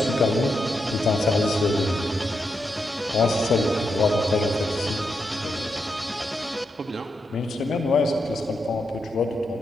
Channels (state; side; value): normal; both; correlation 0.84